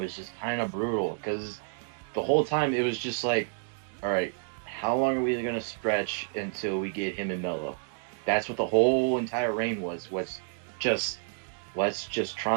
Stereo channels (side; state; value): left; silent; digital silence